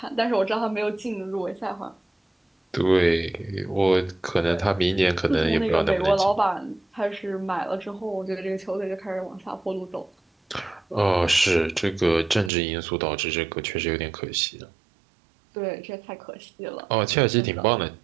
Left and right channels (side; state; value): left; drops out; at 12.5 s